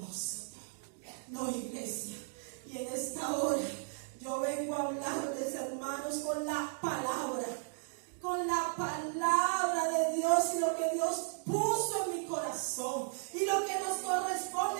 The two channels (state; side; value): silent; left; digital silence